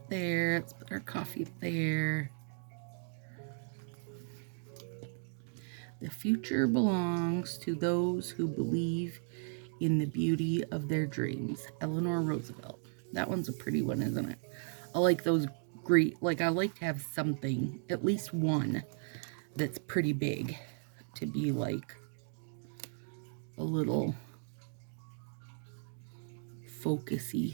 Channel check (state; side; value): silent; left; 54 dB below the other